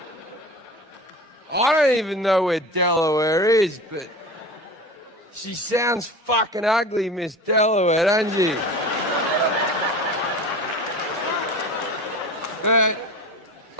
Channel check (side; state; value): both; normal; correlation 0.34